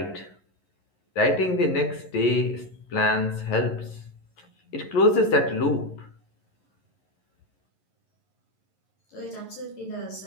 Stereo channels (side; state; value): right; late; 11 ms